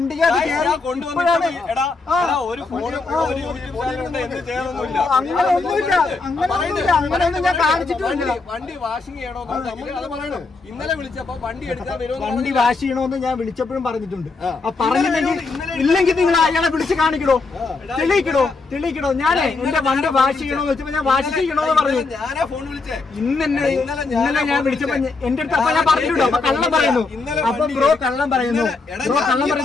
അങ്ങനെയൊന്നും ഞാൻ കാണിച്ചിട്ടില്ല. വണ്ടി വാഷിംഗ് ചെയ്യണോ ഇന്നലെ വിളിച്ചപ്പോ വണ്ടി എടുക്കാൻ വണ്ടി വാഷ് ചെയ്യണോന്ന് ഞാൻ വിളിച്ചപ്പോഴും പറഞ്ഞിട്ടുണ്ട്. ഇല്ലെങ്കിൽ നിങ്ങൾ അയാളെ വിളിച്ച് കാണിക്കണോ, തെളിയിക്കണോ. ഞാനേ എന്റെ വണ്ടി വാഷ് ചെയ്യണോന്ന് വെച്ചപ്പോ ഞാൻ വാഷ് ചെയ്യണോന്ന് പറഞ്ഞു. ഇന്നലെ ഞാൻ വിളിച്ചപ്പോ എന്റെ അടുത്ത് അപ്പൊ ഞാൻ പറഞ്ഞിട്ടുണ്ടോ അപ്പൊ കള്ളം പറയുന്നു. അപ്പൊ ബ്രോ കള്ളം പറയുന്നു.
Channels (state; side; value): quieter; right; 3.9 dB